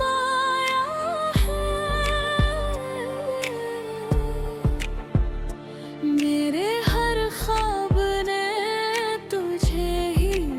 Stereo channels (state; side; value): identical; both; correlation 1.00